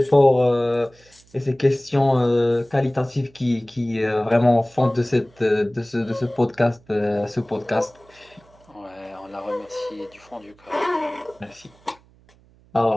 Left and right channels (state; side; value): noise; right; hum, 29 dB below the sound